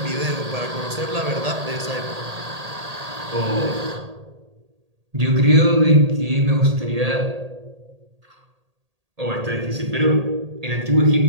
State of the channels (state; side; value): late; left; 1.8 ms